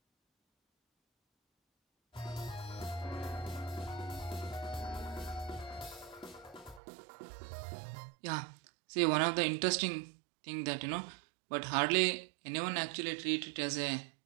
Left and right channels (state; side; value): drops out; left; at 6.8 s